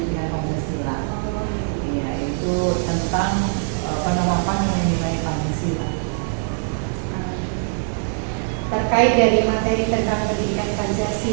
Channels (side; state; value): left; silent; 64 dB below the other